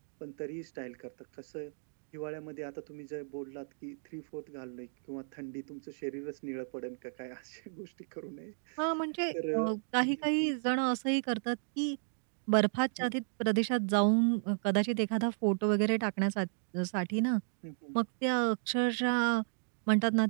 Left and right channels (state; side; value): silent; left; digital silence